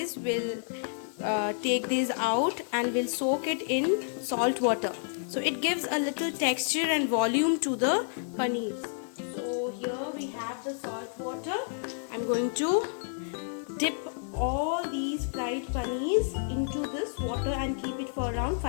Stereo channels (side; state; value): right; silent; digital silence